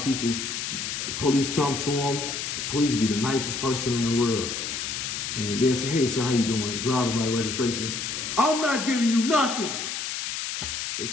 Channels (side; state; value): left; noise; hiss, 4 dB below the sound